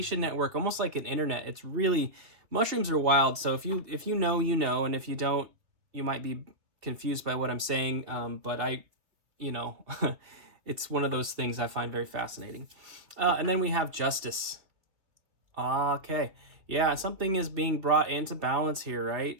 network, almost like an internet. It's really, mushrooms are wild. So if you know, and if you don't, you might be confused by what I'm saying, but you know, it's one of those things I find very fascinating. And then we have justice. Okay. Yeah, something is being brought into balance here,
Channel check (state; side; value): late; left; 2.8 ms